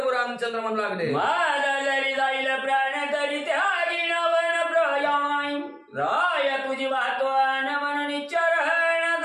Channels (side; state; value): both; identical; correlation 1.00